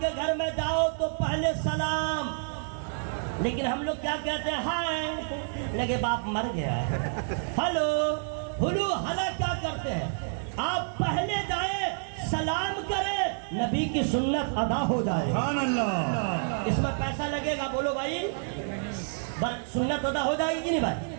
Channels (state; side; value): silent; left; digital silence